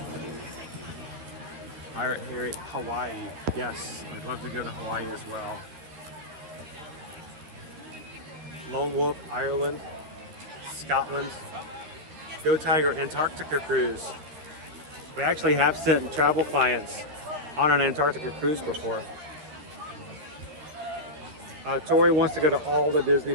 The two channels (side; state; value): left; late; 13 ms